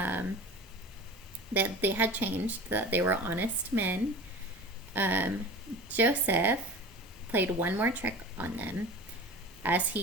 that they had changed, that they were honest men, Joseph played one more trick on them. As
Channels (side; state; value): both; normal; correlation 0.36